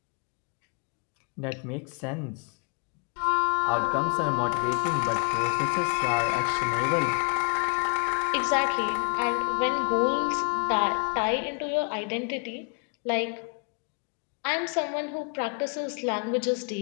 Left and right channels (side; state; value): right; quieter; 38.3 dB